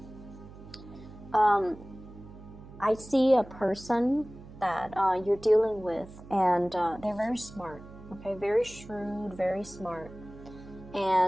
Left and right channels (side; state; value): right; noise; hum, 17 dB below the sound